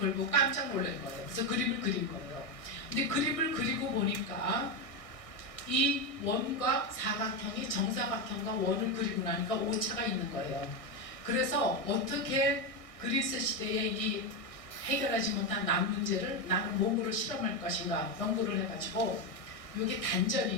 보고 깜짝 놀란 거예요. 그래서 그림을 그린 거예요. 근데 그림을 그리고 보니까 이 원과 사각형이 정사각형과 원을 그리고 나니까 오차가 있는 거예요. 그래서 어떻게 그리스 시대의 이 해결하지 못한 남 문제를 나는 몸으로 실험할 것인가 연구를 해가지고 여기 단전이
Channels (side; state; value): right; late; 1.6 ms